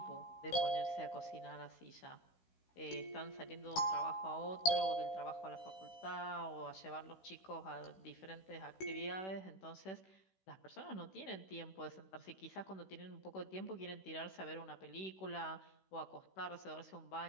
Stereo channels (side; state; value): right; late; 16 ms